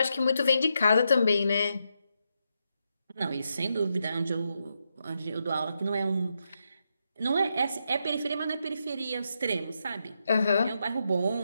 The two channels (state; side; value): inverted; both; correlation -0.83